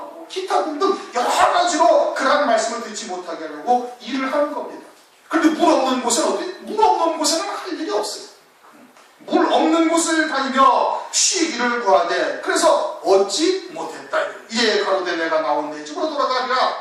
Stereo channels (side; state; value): both; identical; correlation 1.00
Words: 기타 등등 여러 가지로 그러한 말씀을 듣지 못하게 하려고 일을 하는 겁니다. 그런데 물 없는 곳은 어디? 물 없는 곳에는 할 일이 없어요. 물 없는 곳을 다니며 쉬기를 구하되, 그래서 얻지 못했다. 이에 가로되 내가 나온 내 집으로 돌아가리라